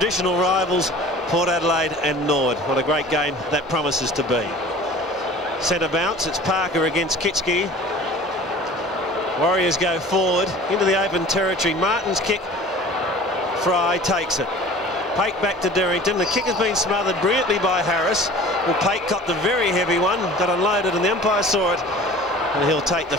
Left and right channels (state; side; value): normal; both; correlation 0.43